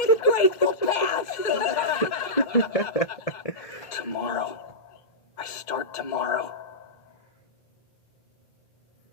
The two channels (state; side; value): late; right; 2.1 ms